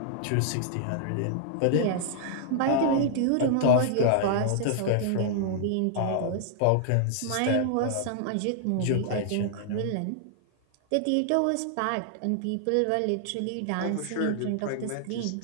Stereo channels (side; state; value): both; different; correlation -0.01